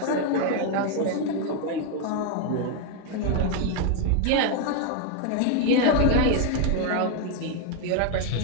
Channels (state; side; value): different; both; correlation 0.01